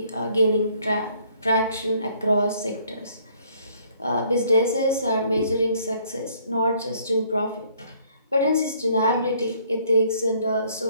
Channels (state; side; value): inverted; both; correlation -0.63